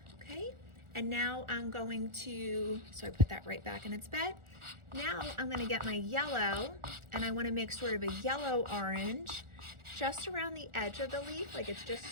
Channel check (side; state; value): left; late; 1.4 ms